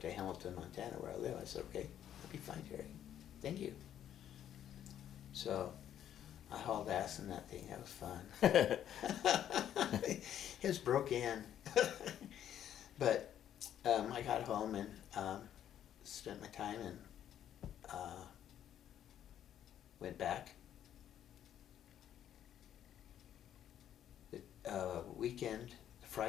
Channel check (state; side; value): quieter; right; 10.5 dB